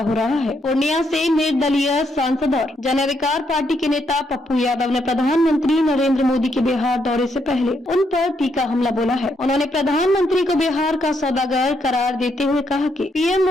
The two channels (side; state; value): both; normal; correlation 0.77